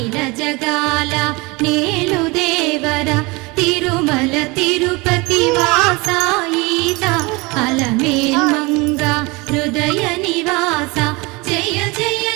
జగాల నేలు దేవర తిరుమల తిరుపతి వాస ఈసా అలమేల్ మంగ హృదయ నివాస జయ జయ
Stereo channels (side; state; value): left; quieter; 25.5 dB